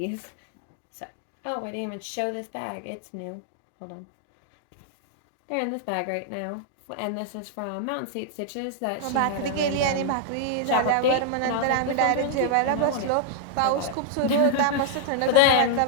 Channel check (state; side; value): different; both; correlation -0.01